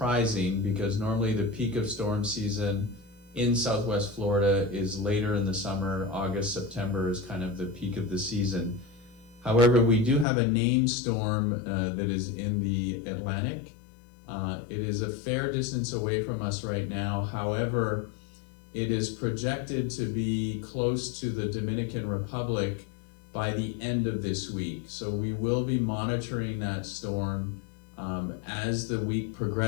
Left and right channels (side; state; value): right; drops out; at 10.2 s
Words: because normally the peak of storm season in Southwest Florida is later in the summer. August, September is kind of the peak of the season. However, we do have a named storm that is in the Atlantic. It is a fair distance away from us right now. However, it is projected to be close to the Dominican Republic by the end of this week. So we will be monitoring that storm. As the week